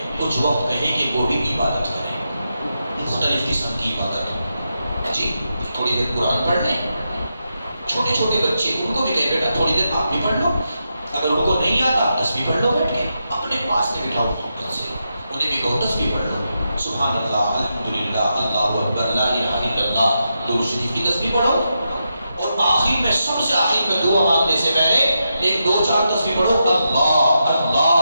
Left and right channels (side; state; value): both; inverted; correlation -0.86